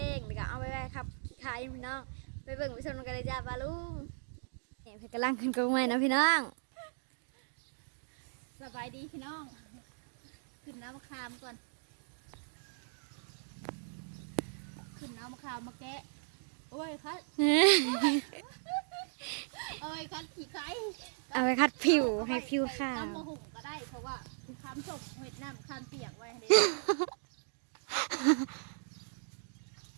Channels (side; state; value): left; silent; digital silence